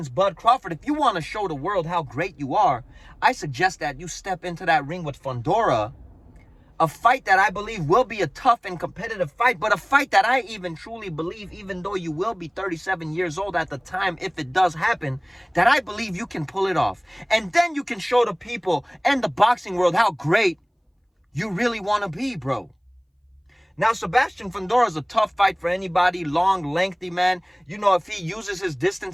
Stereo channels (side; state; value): both; identical; correlation 1.00